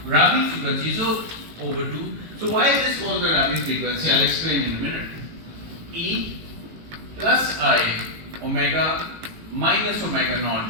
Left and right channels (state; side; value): late; left; 18 ms